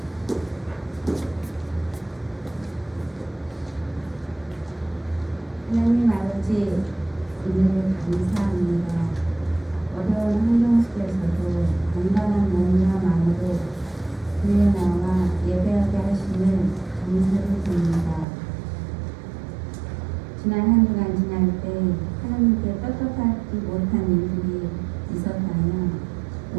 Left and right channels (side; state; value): left; drops out; at 18.2 s